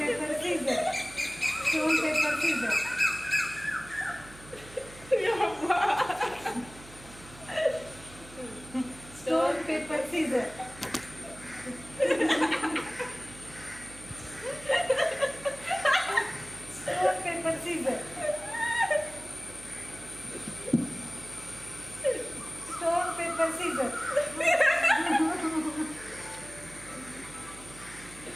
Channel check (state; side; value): noise; right; hum, 19 dB below the sound